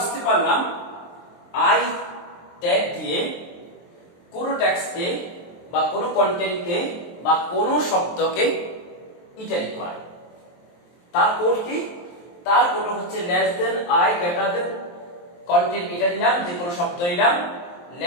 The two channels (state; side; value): late; right; 23 ms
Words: পারলাম আই ট্যাগ দিয়ে কোন টেক্সটকে বা কোন কন্টেন্টকে বা কোন শব্দকে ইটালিক করা। তার কোড কি? তার কোড হচ্ছে less than, I, greater than, content এটা দিলাম, যে কোনো শব্দ দিলাম,